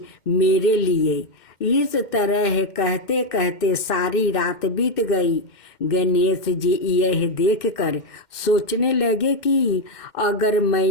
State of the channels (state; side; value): late; right; 2.1 ms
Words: मेरे लिए। इस तरह कहते कहते सारी रात बीत गई। गणेश जी यह देखकर सोचने लगे कि अगर